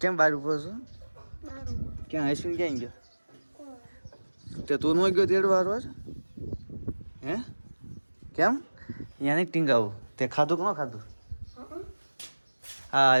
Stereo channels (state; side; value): inverted; both; correlation -1.00